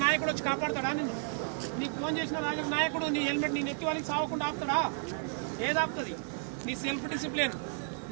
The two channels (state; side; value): silent; left; 56 dB below the other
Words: నాయకుడు వచ్చి కాపాడతాడా నిన్ను? నీకు ఫోన్ చేసిన నాయకుడు నీ హెల్మెట్ నీ నెత్తి వాళ్ళకి సాగకుండా ఆపుతాడా? ఏది ఆపుతుంది? నీ సెల్ఫ్ డిసిప్లిన్,